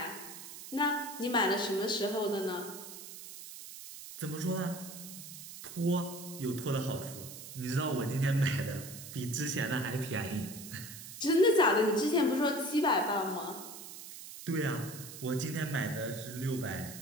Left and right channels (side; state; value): right; noise; hiss, 12 dB below the sound